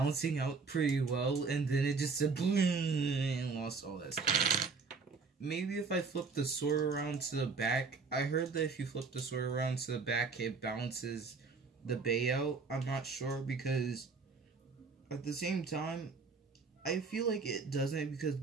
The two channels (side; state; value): left; quieter; 4.7 dB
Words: out pretty well, and then it just said boom and lost all that stuff. Maybe if I flip the sword around to the back, I heard that if you flip the sword around to the back, it balances the Bay out. I'm not sure, because at the same time, I feel like it doesn't, because